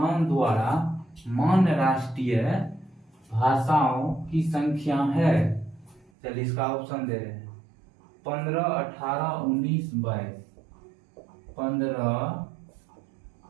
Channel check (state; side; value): drops out; left; at 6.1 s